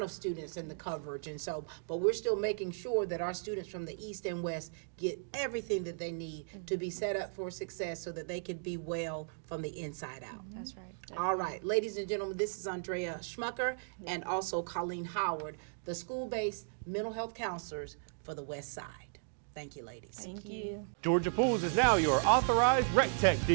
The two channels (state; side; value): silent; left; digital silence